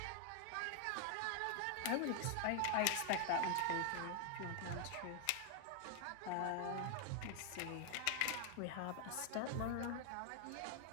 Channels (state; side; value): different; both; correlation 0.00